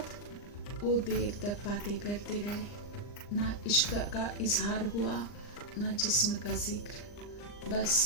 वो देर तक बातें करते रहे, ना इश्क का इजहार हुआ ना जिस्म का जिक्र,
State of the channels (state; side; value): late; right; 39 ms